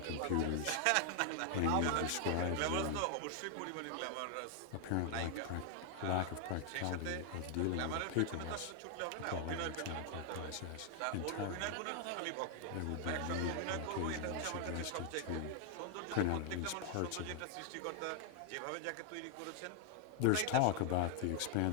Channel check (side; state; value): both; different; correlation 0.00